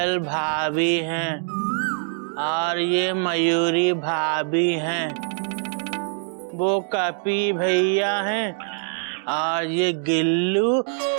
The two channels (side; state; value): left; silent; digital silence